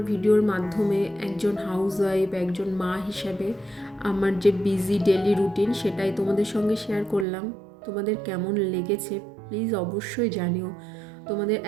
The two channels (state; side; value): drops out; left; at 7.2 s